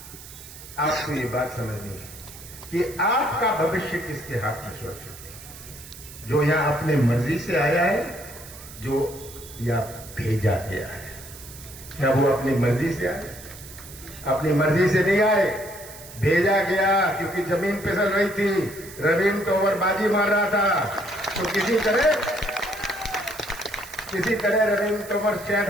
आपको ये बात समझनी है कि आपका भविष्य किसके हाथ में सुरक्षित है। जो यहां अपने मर्जी से आया है, जो या भेजा गया है। क्या वो अपनी मर्जी से आए? अपनी मर्जी से नहीं आए, भेजा गया, क्योंकि जमीन फिसल रही थी, रविंद्र तोमर बाजी मार रहा था, तो किसी तरह रविंद्र तोमर शायद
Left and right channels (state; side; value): noise; right; hiss, 16 dB below the sound